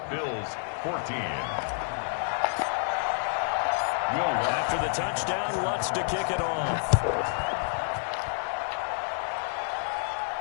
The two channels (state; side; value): silent; right; 59 dB below the other